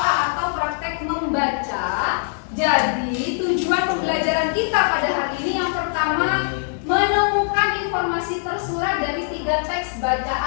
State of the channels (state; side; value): silent; right; digital silence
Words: atau praktek membaca. Jadi tujuan pembelajaran kita pada hari ini yang pertama menemukan informasi tersurat dari tiga teks